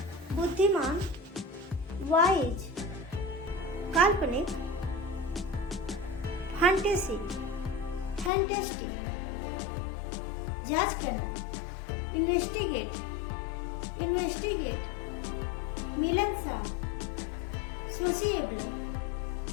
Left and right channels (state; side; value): drops out; right; at 8.3 s